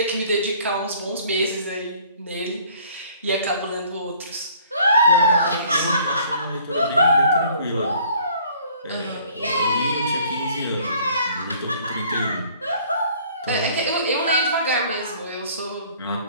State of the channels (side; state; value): both; inverted; correlation -0.56